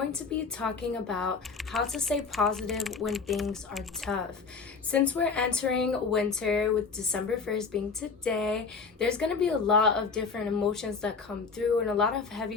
to be talking about how to stay positive when things are tough. Since we're entering winter with December 1st being today, there's going to be a lot of different emotions that come through and a lot of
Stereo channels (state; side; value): quieter; right; 5.0 dB